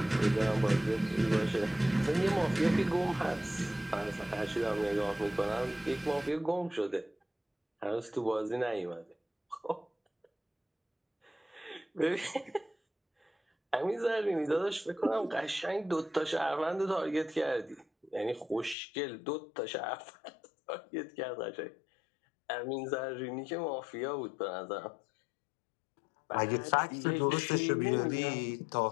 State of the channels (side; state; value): right; drops out; at 18.8 s